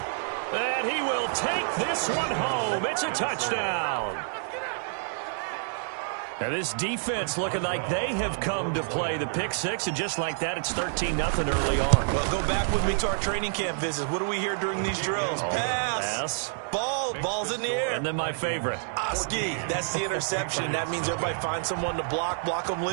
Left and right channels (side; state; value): left; silent; 59 dB below the other